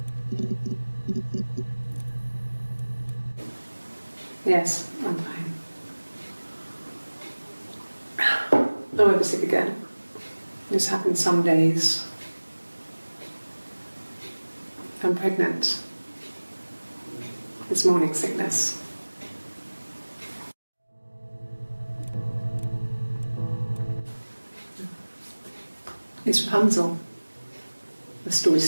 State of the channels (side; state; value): both; inverted; correlation -1.00